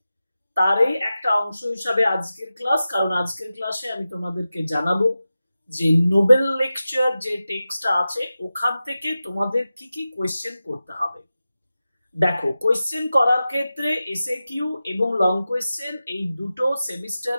তারই একটা অংশ হিসাবে আজকের ক্লাস। কারণ আজকের ক্লাসে আমি তোমাদেরকে জানাবো যে নোবেল লেকচার যে টেক্সটটা আছে ওখান থেকে তোমাদের কি কি কোয়েশ্চেন করতে হবে। দেখো, কোয়েশ্চেন করার ক্ষেত্রে এসএকিউ এবং লং কোয়েশ্চেন এই দুটো সেমিস্টার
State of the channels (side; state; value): both; inverted; correlation -0.94